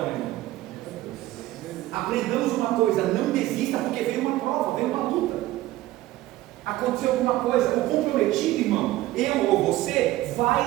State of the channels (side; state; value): left; quieter; 16.2 dB